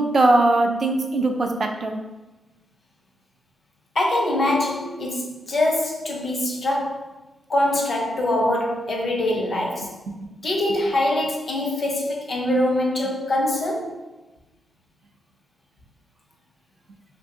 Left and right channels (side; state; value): both; normal; correlation 0.81